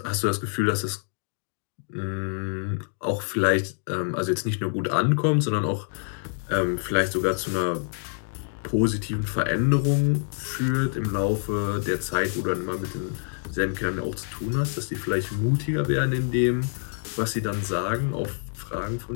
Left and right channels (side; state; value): right; silent; digital silence